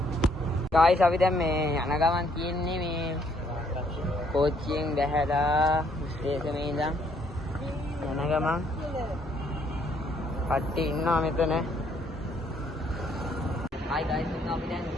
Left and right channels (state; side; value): normal; both; correlation 0.67